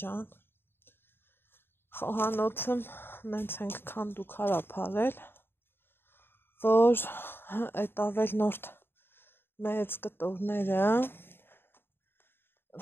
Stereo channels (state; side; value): late; right; 0.11 ms